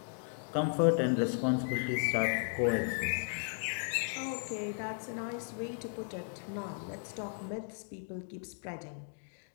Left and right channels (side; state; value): right; silent; digital silence